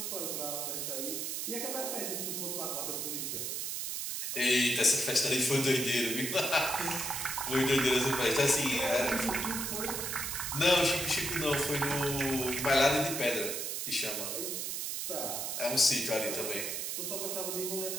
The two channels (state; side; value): noise; right; hiss, 3 dB below the sound